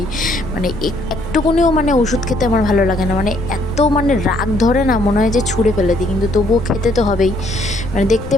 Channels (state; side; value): noise; left; rumble, 11 dB below the sound